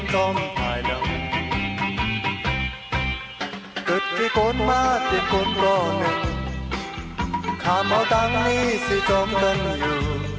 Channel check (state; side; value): identical; both; correlation 1.00